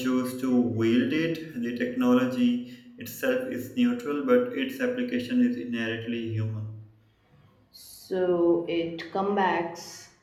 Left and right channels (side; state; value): both; identical; correlation 1.00